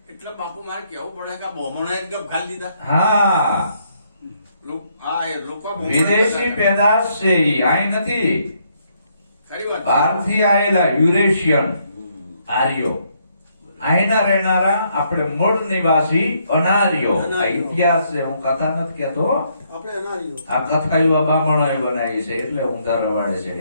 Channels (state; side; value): inverted; both; correlation -0.72